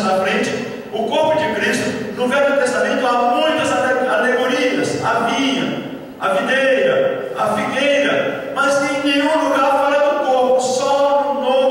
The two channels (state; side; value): identical; both; correlation 1.00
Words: na frente. O corpo de Cristo, no Velho Testamento há muitas alegorias: a vinha, a videira, a figueira, mas em nenhum lugar fala do corpo, só no